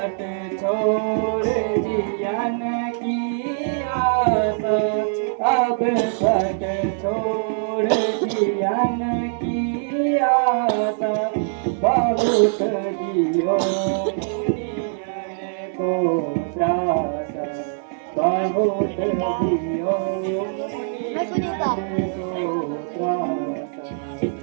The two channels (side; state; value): left; silent; 57 dB below the other